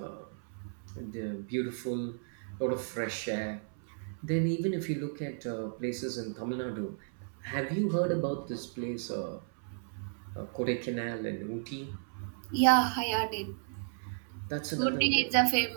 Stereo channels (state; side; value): silent; left; 55 dB below the other